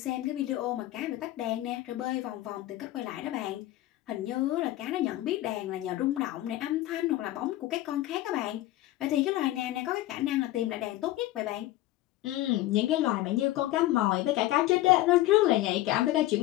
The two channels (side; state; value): right; quieter; 16.0 dB